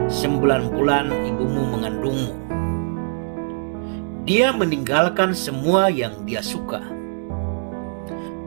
9 bulan ibumu mengandungmu. Dia meninggalkan semua yang dia suka,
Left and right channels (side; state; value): left; silent; 61 dB below the other